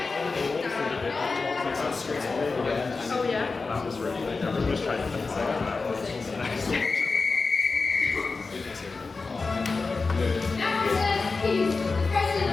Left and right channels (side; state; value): right; quieter; 4.1 dB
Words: yeah? That was really good. Everyone was trying to think that was. He's the president